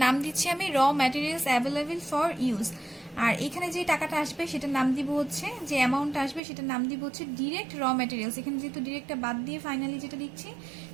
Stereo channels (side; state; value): left; drops out; at 6.4 s